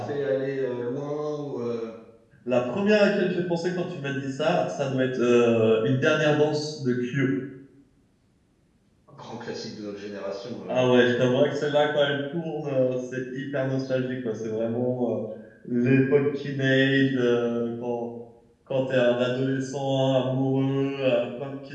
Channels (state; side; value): identical; both; correlation 1.00